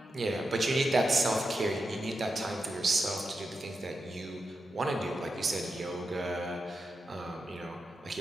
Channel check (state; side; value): normal; both; correlation 0.88